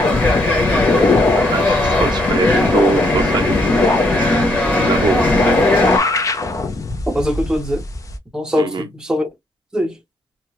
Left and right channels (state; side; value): normal; both; correlation 0.72